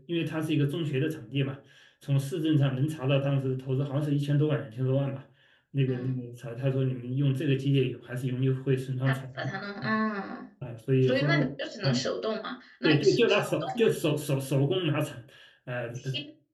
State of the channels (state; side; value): identical; both; correlation 1.00